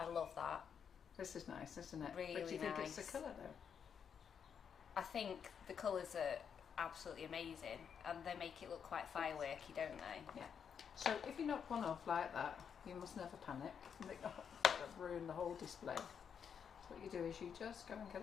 love that. This is nice, isn't it? Really but do you think it's nice. the colour though? I think the colours are absolutely amazing and they make it look quite fireworky, don't they? Yeah. So if you knock one off like that, you must never panic. You think, oh, that'll ruin the whole display. So what you do is you just go and get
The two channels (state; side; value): quieter; right; 7.3 dB